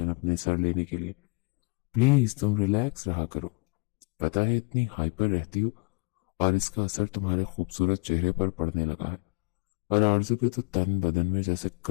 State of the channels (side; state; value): right; quieter; 27.9 dB